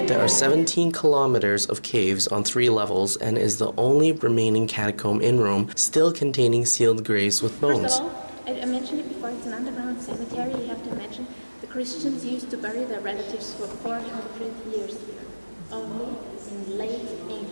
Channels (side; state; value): both; inverted; correlation -1.00